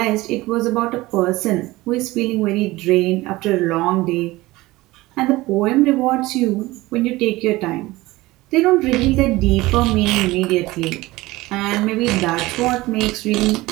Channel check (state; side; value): quieter; left; 19.5 dB